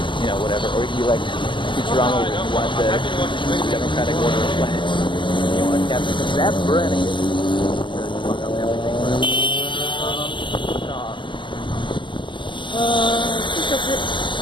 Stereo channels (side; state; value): right; late; 0.24 ms